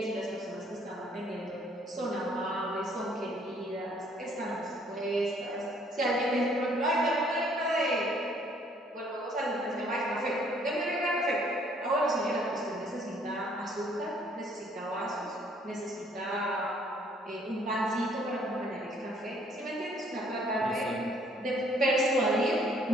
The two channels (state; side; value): normal; both; correlation 0.63